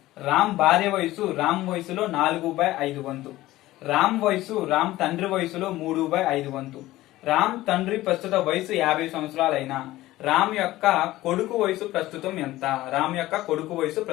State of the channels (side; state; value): right; quieter; 16.6 dB